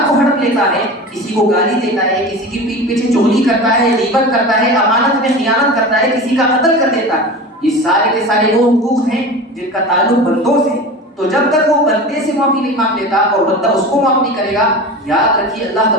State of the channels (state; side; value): normal; both; correlation 0.32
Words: کو ہڑپ لیتا ہے، کسی کو گالی دیتا ہے، کسی کی پیٹھ پیچھے چغلی کرتا ہے، غیبت کرتا ہے، امانت میں خیانت کرتا ہے، کسی کا قتل کر دیتا ہے، یہ سارے کے سارے وہ حقوق ہیں جن کا تعلق بندوں سے ہے۔ تو جب تک وہ بندے سے معافی نہیں مانگ لیتا اور بندہ اس کو معاف نہیں کرے گا، یاد رکھیے اللہ